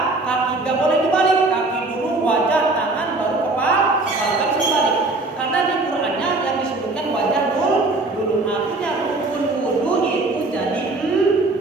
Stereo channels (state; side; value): quieter; left; 3.1 dB